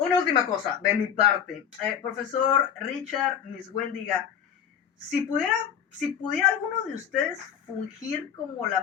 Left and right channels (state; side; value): quieter; right; 8.5 dB